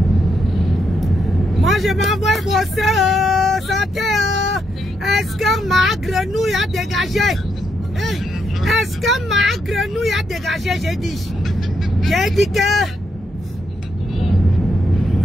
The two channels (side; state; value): both; normal; correlation 0.79